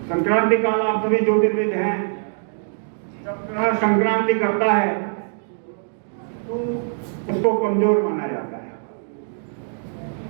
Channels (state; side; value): silent; left; digital silence